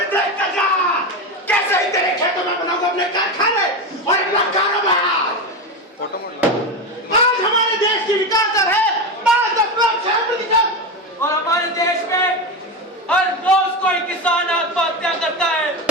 देख कर जा, कैसे ही तेरे खेतों में बनाऊंगा अपने कारखाने और अपना कारोबार। आज हमारे देश की विकास दर है 5.6%। और हमारे देश में हर रोज कोई किसान आत्महत्या करता है।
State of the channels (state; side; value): normal; both; correlation 0.18